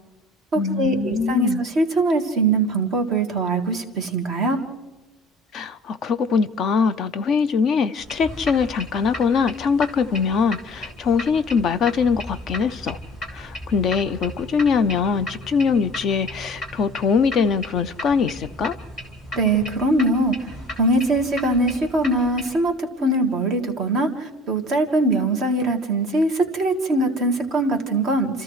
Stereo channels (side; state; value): both; normal; correlation 0.46